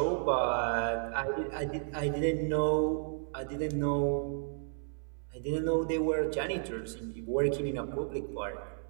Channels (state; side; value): silent; left; 56 dB below the other